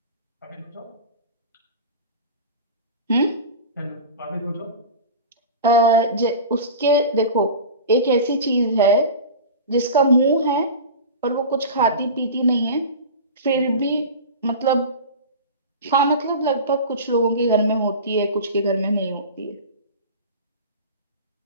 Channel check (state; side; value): inverted; both; correlation -0.31